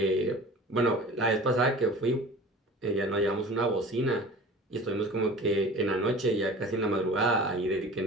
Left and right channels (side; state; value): both; normal; correlation 0.40